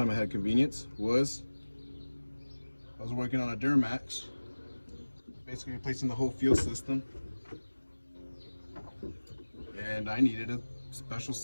I had convenience was I was working on a Duramax, basically replacing the whole fuel system, and I needed a special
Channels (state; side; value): inverted; both; correlation -1.00